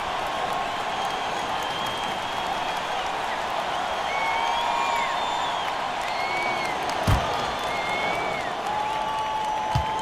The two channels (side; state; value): both; identical; correlation 1.00